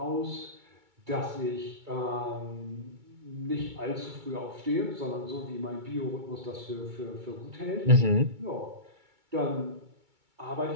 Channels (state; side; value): late; left; 2.2 ms